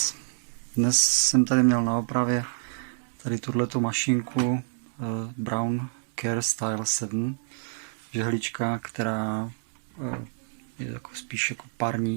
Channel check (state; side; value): silent; left; 60 dB below the other